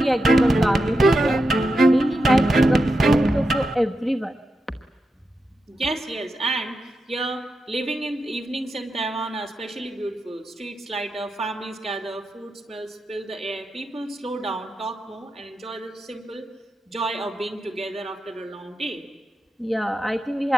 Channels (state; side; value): normal; both; correlation 0.88